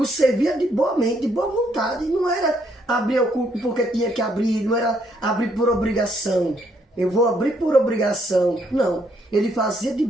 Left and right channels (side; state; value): both; normal; correlation 0.71